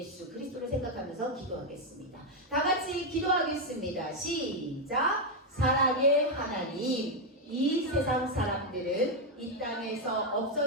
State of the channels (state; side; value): normal; both; correlation 0.02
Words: 그리스도를 생각하면서 기도하겠습니다. 다 같이 기도하겠습니다. 시작! 사랑의 하나님, 이 세상 사람들은 이 땅에서